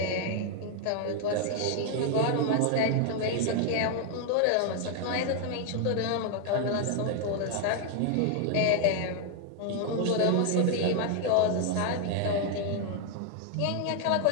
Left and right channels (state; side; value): different; both; correlation 0.00